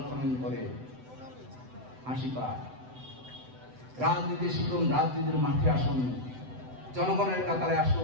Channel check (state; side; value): late; left; 7.9 ms